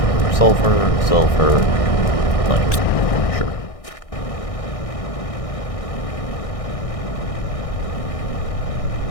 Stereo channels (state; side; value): late; right; 1.6 ms